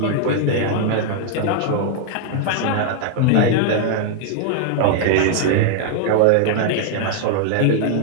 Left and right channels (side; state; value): both; different; correlation -0.01